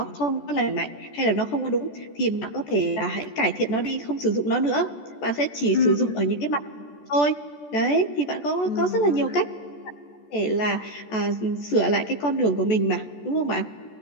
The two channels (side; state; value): right; late; 14 ms